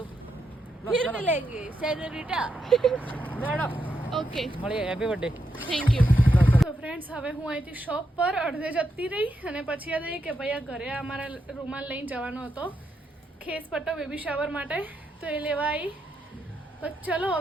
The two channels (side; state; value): both; normal; correlation 0.82